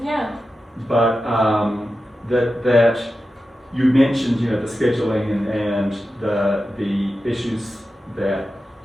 Yeah. But that you mentioned, you know, the scheduling and the issues that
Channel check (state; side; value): normal; both; correlation 0.92